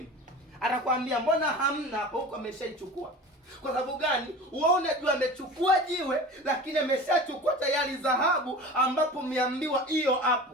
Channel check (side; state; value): both; normal; correlation 0.36